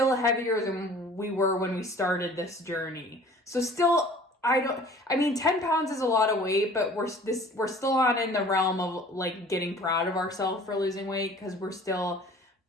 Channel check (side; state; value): both; normal; correlation 0.48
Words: heavier than we were when we started this journey. So still, 10 pounds is a lot of weight, but we're still not in the realm of like getting proud of ourselves for losing weight because we're still